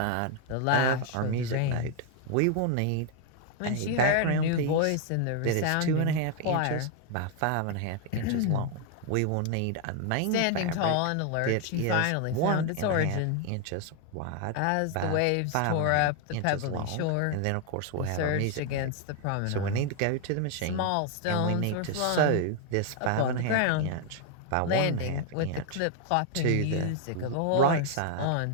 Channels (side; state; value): both; different; correlation 0.00